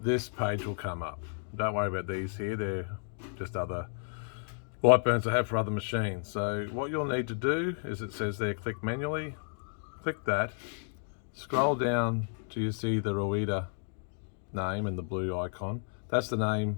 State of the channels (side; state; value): right; silent; 56 dB below the other